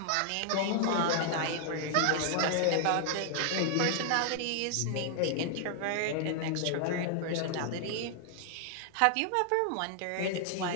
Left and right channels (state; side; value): different; both; correlation 0.00